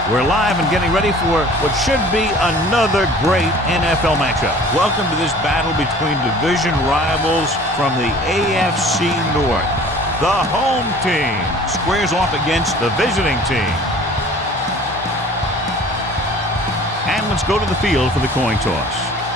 We're live and getting ready for what should be another great NFL matchup. Welcome to this battle between division rivals from the AFC North. The home team squares off against the visiting team. And let's go to the field for the coin toss.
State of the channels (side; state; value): both; normal; correlation 0.48